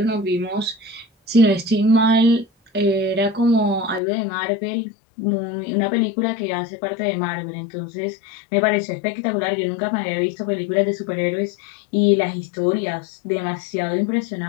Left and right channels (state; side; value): drops out; right; at 4.0 s